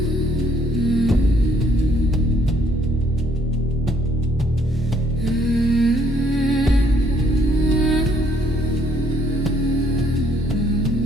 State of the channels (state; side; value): normal; both; correlation 0.66